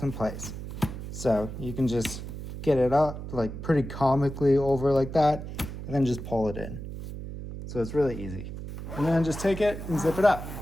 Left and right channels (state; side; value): noise; right; hum, 9 dB below the sound